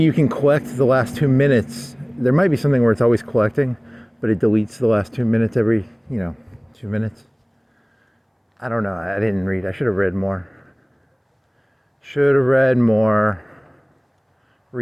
can collect the last 2 minutes. There might be something where it's always collecting, but it deletes the last 2 minutes every, 2 minutes. I don't know. I didn't read. I should have read more. Should have read more.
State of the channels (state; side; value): identical; both; correlation 1.00